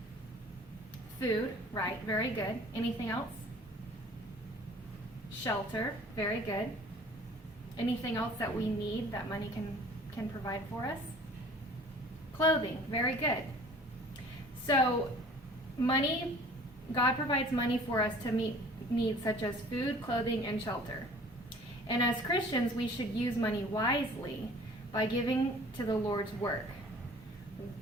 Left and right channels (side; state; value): both; normal; correlation 0.49